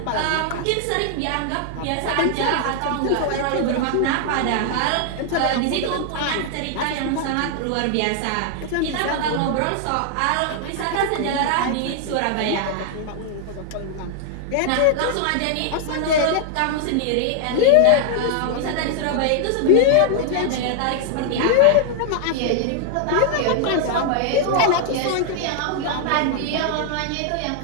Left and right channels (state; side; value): different; both; correlation 0.00